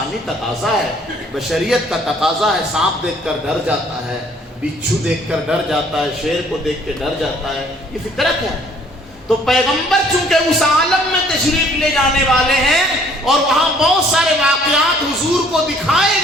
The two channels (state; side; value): normal; both; correlation 0.59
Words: تقاضا ہے، بشریت کا تقاضا ہے، سانپ دیکھ کر ڈر جاتا ہے، بچھو دیکھ کر ڈر جاتا ہے، شیر کو دیکھ کے ڈر جاتا ہے، یہ فطرت ہے۔ تو پیغمبر چونکہ اس عالم میں تشریف لے جانے والے ہیں اور وہاں بہت سارے واقعات حضور کو دکھائے